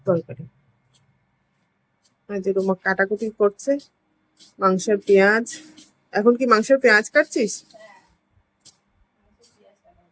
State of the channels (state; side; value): identical; both; correlation 1.00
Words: তরকারি। যে রুমা কাটাকুটি করছে মাংসের পেঁয়াজ। এখন কি মাংসের পেঁয়াজ কাটছিস?